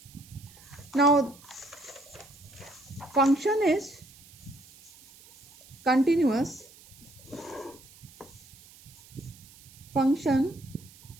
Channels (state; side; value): noise; right; hiss, 23 dB below the sound